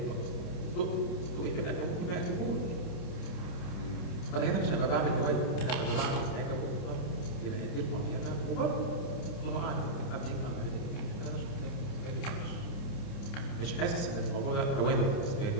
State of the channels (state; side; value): late; right; 29 ms